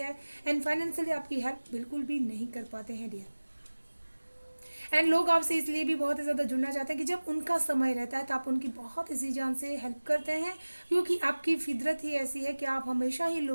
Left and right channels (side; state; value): both; inverted; correlation -1.00